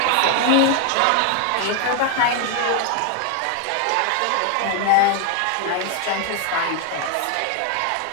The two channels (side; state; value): both; different; correlation 0.01